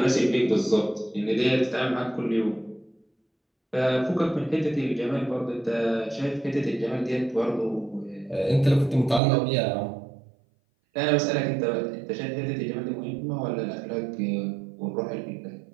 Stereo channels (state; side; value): drops out; left; at 9.2 s